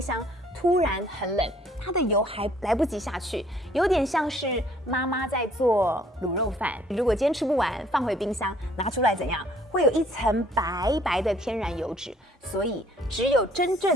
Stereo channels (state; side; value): normal; both; correlation 0.60